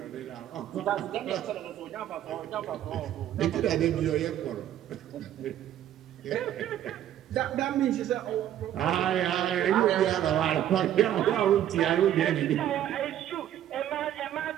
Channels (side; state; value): left; quieter; 11.4 dB